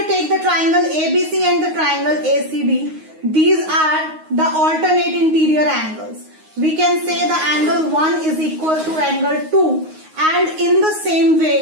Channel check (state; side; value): late; left; 9.5 ms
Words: take the triangle ABC and the triangle ACD, these are the alternate interior angles. We can say the angle 1 is equal to angle 2, and in the same